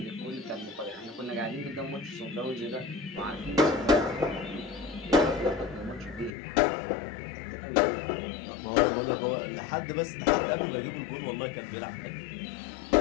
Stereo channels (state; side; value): drops out; right; at 6.3 s